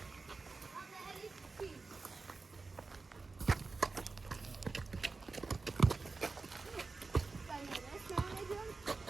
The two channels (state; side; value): quieter; left; 3.9 dB